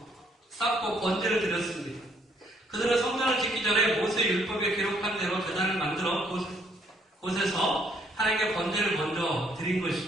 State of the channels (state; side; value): normal; both; correlation 0.67